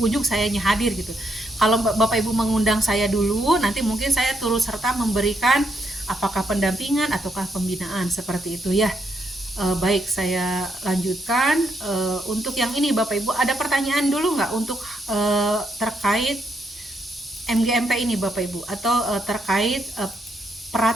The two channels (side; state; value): both; normal; correlation 0.77